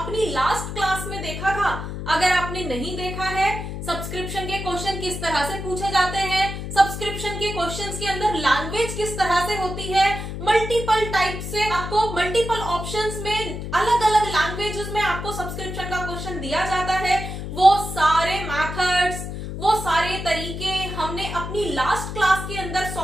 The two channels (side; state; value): left; noise; hum, 7 dB below the sound